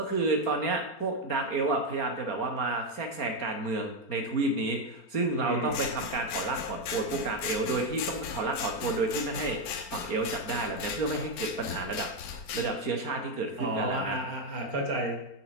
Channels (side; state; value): right; late; 4.3 ms